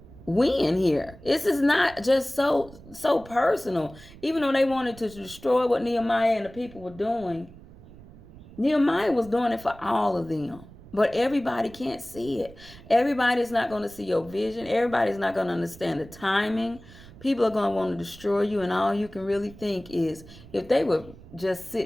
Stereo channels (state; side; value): noise; right; rumble, 20 dB below the sound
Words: win here. This is not just so personal. Even though they wanted to destroy what Nehemiah and the people were doing, Nehemiah was doing it for all of them. But everybody can't see it. Everybody's not going to see your vision. Everybody's not going to understand the timing. People are going to want to destroy you, and all you can really think is if they would just